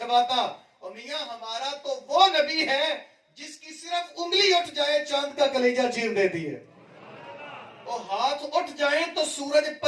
اور میاں ہمارا تو وہ نبی ہے جس کی صرف انگلی اٹھ جائے چاند کا کلیجہ چیر دیتی ہے، اور ہاتھ اٹھ جائیں تو سورج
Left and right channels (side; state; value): both; identical; correlation 1.00